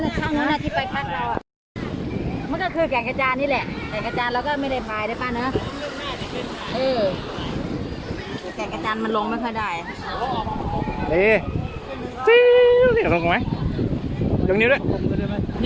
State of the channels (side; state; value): both; identical; correlation 1.00